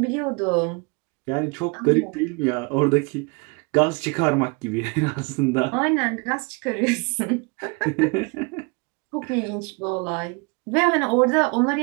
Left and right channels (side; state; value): left; quieter; 30.5 dB